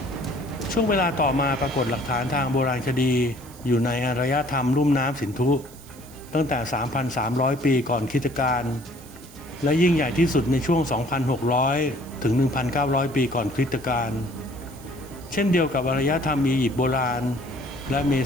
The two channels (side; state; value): right; noise; hiss, 22 dB below the sound